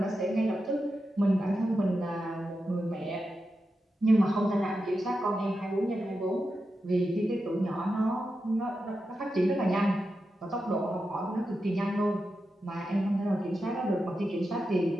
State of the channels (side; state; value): both; normal; correlation 0.89